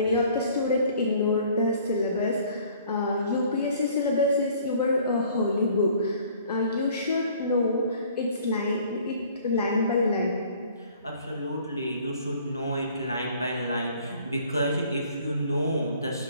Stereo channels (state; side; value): inverted; both; correlation -0.55